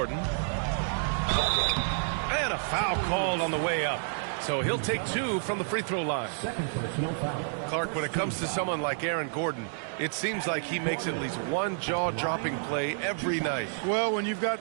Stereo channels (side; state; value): left; silent; digital silence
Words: And a foul called on the way up. So he'll take 2 from the free throw line. Second personal foul. Clark, when it comes to someone like Aaron Gordon, it seems like he makes at least one jaw-dropping play every night. Well, when you've